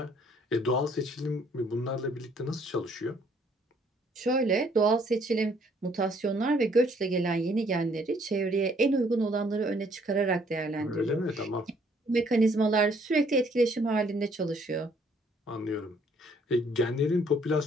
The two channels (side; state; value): both; normal; correlation 0.64